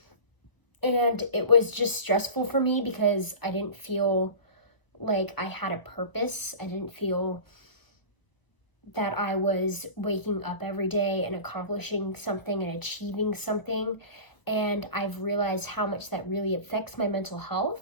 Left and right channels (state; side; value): late; right; 1.2 ms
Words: And it was just stressful for me because I didn't feel like I had a purpose. I didn't feel that I was waking up every day and accomplishing something and achieving something. And I've realized how much that really affects my mental